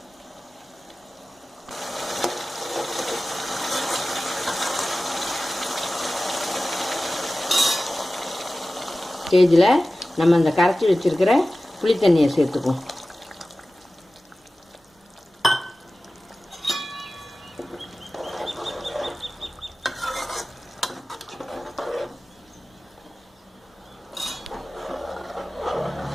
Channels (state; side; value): normal; both; correlation 0.96